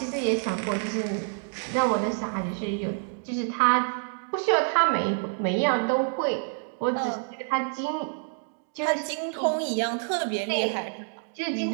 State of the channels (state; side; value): silent; left; 60 dB below the other